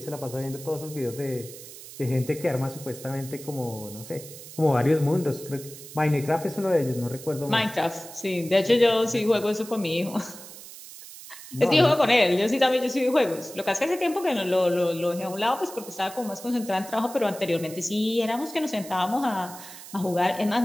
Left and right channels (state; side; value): noise; right; hiss, 15 dB below the sound